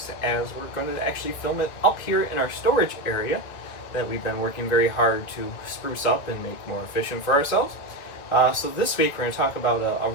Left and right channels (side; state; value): right; late; 2.0 ms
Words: as we're going to actually film it up here in our storage area that we've been working very hard to spruce up and make more efficient for ourselves. So this week we're going to talk about a